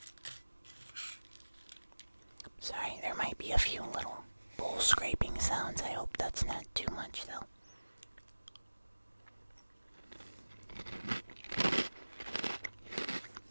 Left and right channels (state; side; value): inverted; both; correlation -1.00